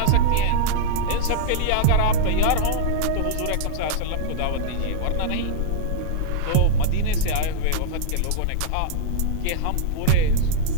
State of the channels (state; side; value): different; both; correlation -0.01